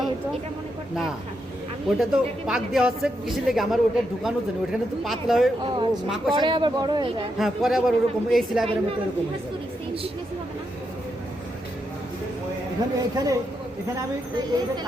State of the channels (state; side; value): normal; both; correlation 0.82